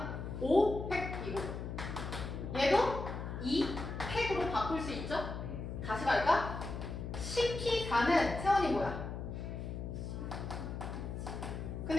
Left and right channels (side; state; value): left; noise; hum, 6 dB below the sound